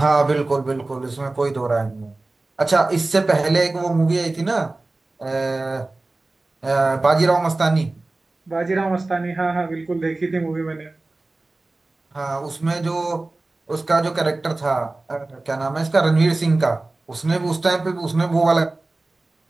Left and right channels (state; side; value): quieter; left; 3.1 dB